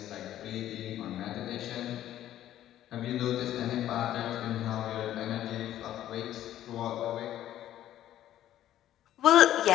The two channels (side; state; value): right; quieter; 12.5 dB